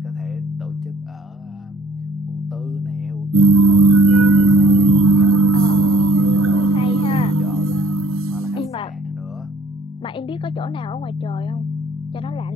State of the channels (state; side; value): normal; both; correlation 0.58